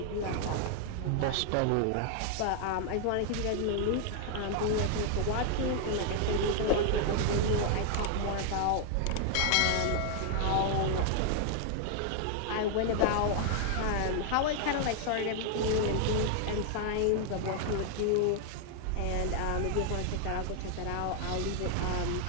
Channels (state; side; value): different; both; correlation 0.00